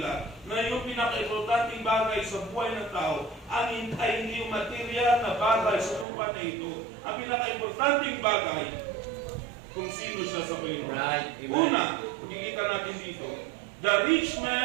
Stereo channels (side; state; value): left; drops out; at 6.1 s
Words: na yung pinaka-importanting bagay sa buhay ng tao ay hindi yung material na bagay sa lupa na ito. Ang pinaka-importanting bagay kung sino siya sa Panginoon. Right. Una, makikita natin dito, the rich